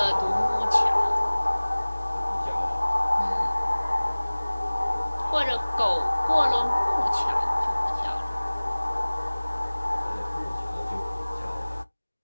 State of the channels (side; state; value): both; inverted; correlation -1.00